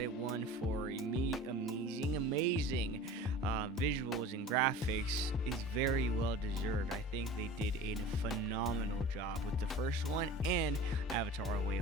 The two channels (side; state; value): both; normal; correlation 0.39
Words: it won for amazing visuals and graphics is very well deserved. I think they did a phenomenal job with the first one and Avatar: A Way